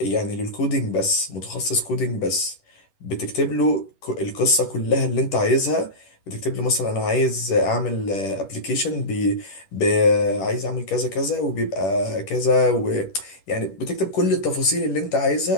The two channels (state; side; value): late; right; 11 ms